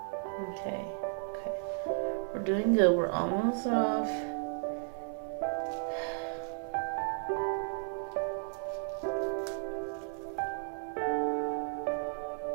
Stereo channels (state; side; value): silent; left; 55 dB below the other